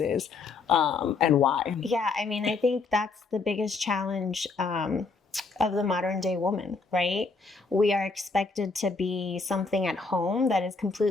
and why? Yeah, I mean, I think that's the biggest challenge of the modern day woman, right? We are expected to be something at home that is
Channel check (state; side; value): quieter; right; 4.2 dB